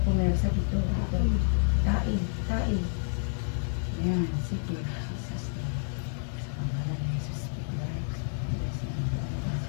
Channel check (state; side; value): silent; right; 58 dB below the other